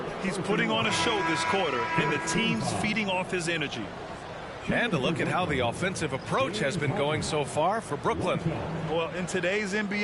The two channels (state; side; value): identical; both; correlation 1.00